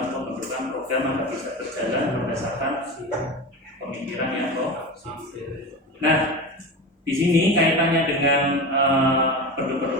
pembentukan program agar bisa berjalan berdasarkan pemikiran yang positif. Nah, di sini kaitannya dengan bentuk-bentuk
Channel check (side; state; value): both; normal; correlation 0.26